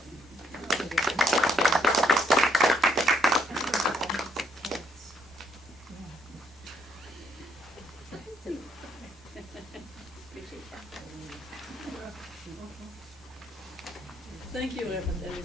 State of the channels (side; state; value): both; normal; correlation 0.71